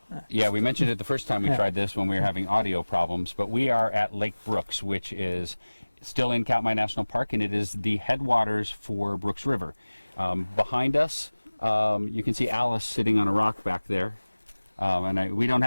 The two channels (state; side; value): inverted; both; correlation -1.00